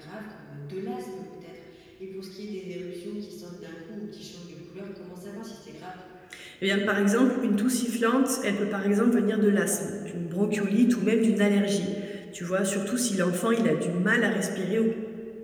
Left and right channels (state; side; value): identical; both; correlation 1.00